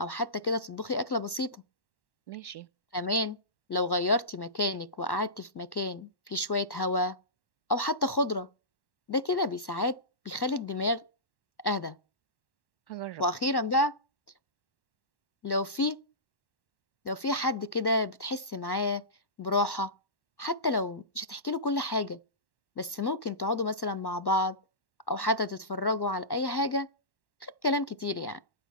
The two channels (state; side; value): late; right; 1.1 ms